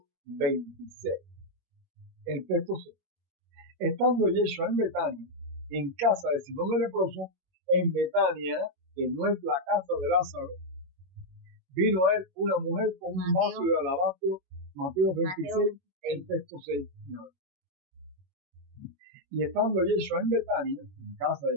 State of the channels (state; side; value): late; left; 21 ms